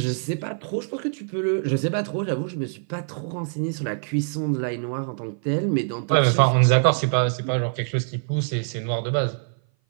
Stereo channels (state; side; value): silent; left; 57 dB below the other